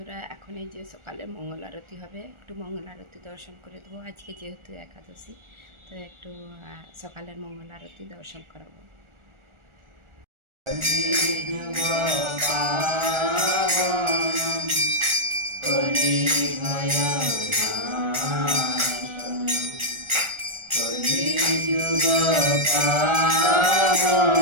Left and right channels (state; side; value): late; left; 1.4 ms